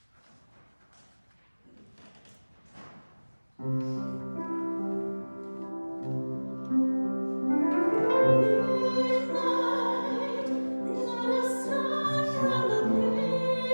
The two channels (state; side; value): inverted; both; correlation -1.00